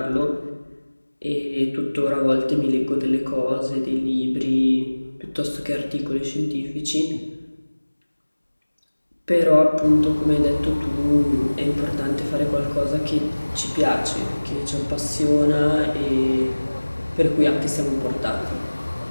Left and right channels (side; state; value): both; inverted; correlation -1.00